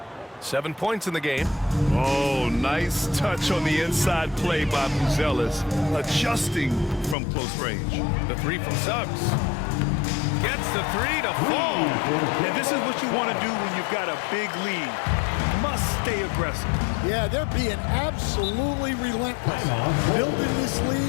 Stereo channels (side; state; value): right; drops out; at 7.2 s